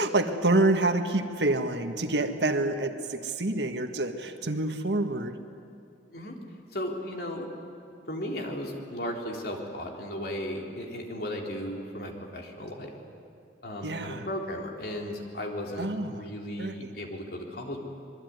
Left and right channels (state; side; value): normal; both; correlation 0.28